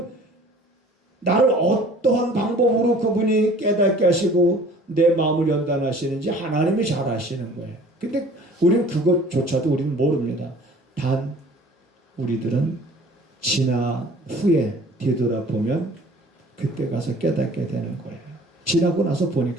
나를 어떠한 방법으로 그분이 깨닫게 하시고 내 마음을 연단하시는지 하나님이 잘 아시는 거예요. 근데 우리는 그것조차도 우리는 모릅니다. 단 우리들은 지나 후에 뒤돌아보면 그때 가서 깨닫게 되는 거예요. 지나고 나서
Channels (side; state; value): both; normal; correlation 0.49